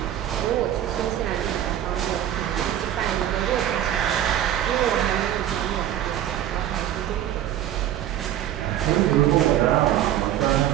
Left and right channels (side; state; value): left; quieter; 11.6 dB